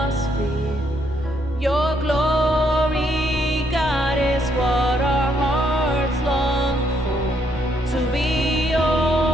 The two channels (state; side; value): normal; both; correlation 0.73